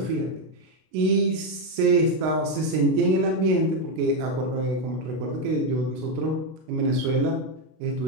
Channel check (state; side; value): late; left; 32 ms